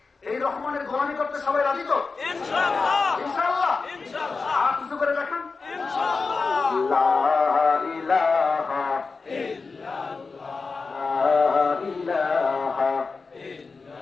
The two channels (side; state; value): right; quieter; 4.3 dB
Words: এই রহমানের গোলামি করতে সবাই রাজি তো? ইনশাআল্লাহ, ইনশাআল্লাহ, ইনশাআল্লাহ। আর কিছু করে দেখেন, ইনশাআল্লাহ। লা ইলাহা ইল্লাল্লাহ।